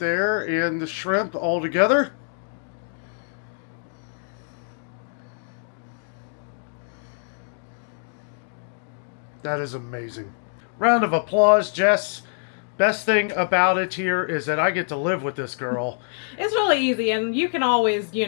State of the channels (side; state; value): right; silent; digital silence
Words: and the shrimp all together. That is amazing. Round of applause, Jess. Best thing about it here is that I get to live with this girl. It's really easy, and you can always,